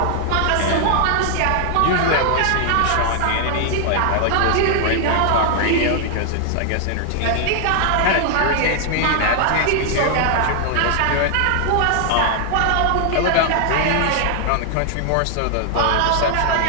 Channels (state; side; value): different; both; correlation 0.00